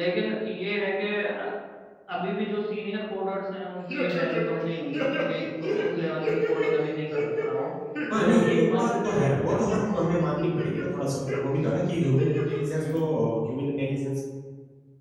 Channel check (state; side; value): identical; both; correlation 1.00